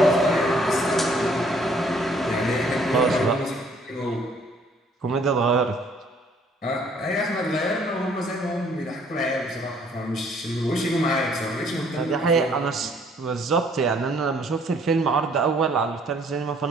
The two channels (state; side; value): normal; both; correlation 0.61